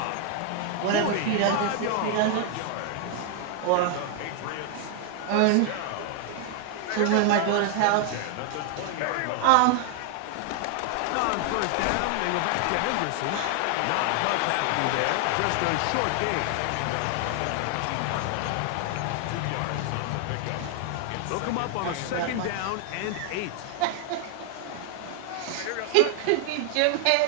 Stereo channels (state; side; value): different; both; correlation 0.00